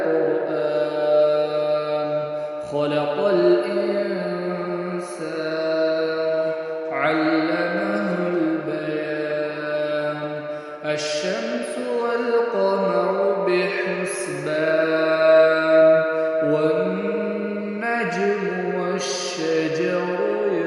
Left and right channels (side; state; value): both; identical; correlation 1.00